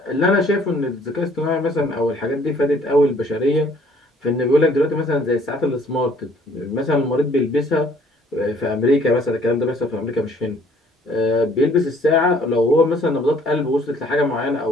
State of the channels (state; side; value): normal; both; correlation 0.59